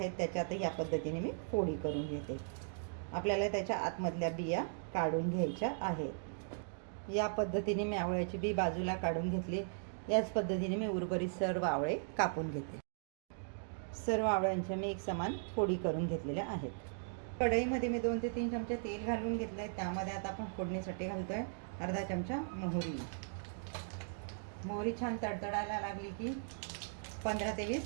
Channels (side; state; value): left; silent; digital silence